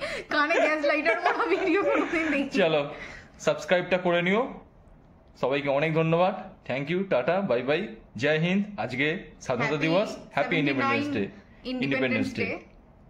কানে গ্যাস লাইটার মতো ভিডিও কোনোদিন দেখি। চলো সাবস্ক্রাইবটা করে নিও। সবাইকে অনেক ধন্যবাদ, thank you, tata, bye bye, Jai Hind. আজকে স্বাধীনতা দিবস, হ্যাপি ইন্ডিপেন্ডেন্স ডে।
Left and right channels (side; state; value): both; identical; correlation 1.00